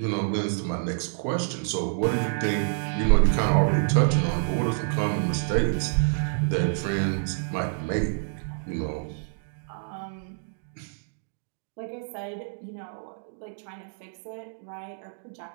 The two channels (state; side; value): silent; left; digital silence